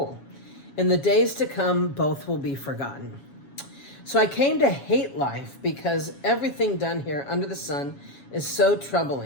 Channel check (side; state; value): right; late; 7.2 ms